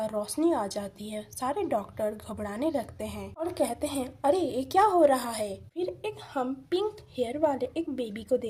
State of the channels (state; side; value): identical; both; correlation 1.00